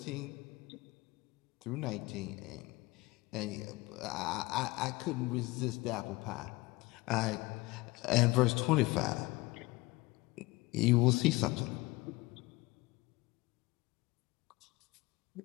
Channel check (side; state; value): right; quieter; 21.6 dB